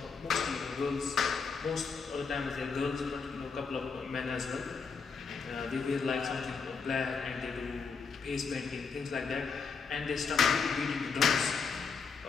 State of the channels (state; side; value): quieter; right; 5.4 dB